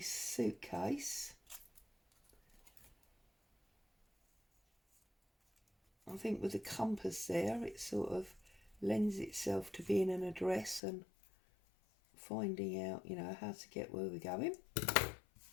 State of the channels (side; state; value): right; drops out; at 10.8 s